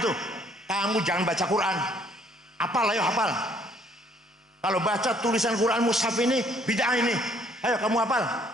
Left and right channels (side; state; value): both; normal; correlation 0.63